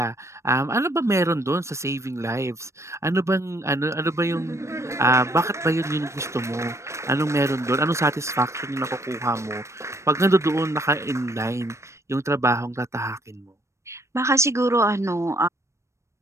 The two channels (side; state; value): left; late; 0.14 ms